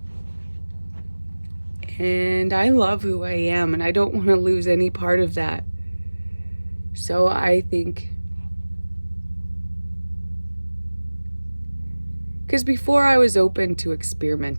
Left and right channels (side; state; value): both; inverted; correlation -1.00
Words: And I love who I am, and I don't want to lose any part of that. So I think Because before I was open to